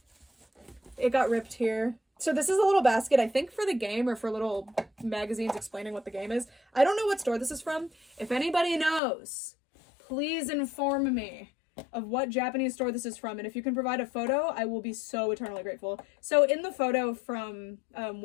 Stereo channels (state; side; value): drops out; right; at 9.0 s